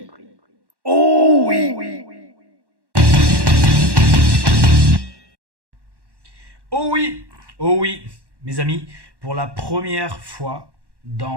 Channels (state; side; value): late; left; 1.1 ms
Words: Oh oui. Oh oui, oh oui, mes amis, pour la première fois